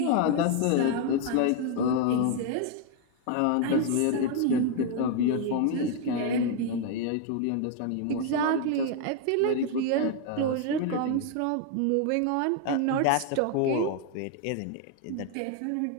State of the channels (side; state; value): both; different; correlation 0.00